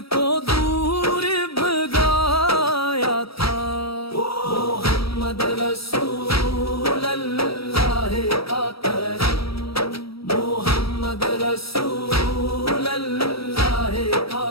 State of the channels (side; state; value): right; late; 0.76 ms